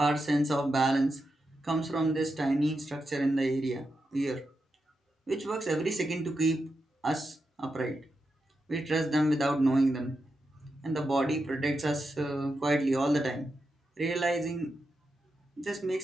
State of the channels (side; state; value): both; normal; correlation 0.87